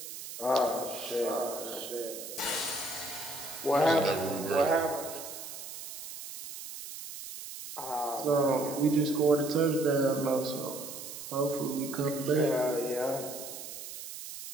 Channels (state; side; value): noise; right; hiss, 10 dB below the sound